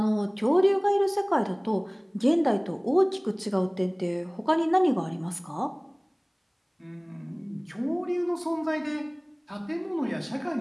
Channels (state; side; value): identical; both; correlation 1.00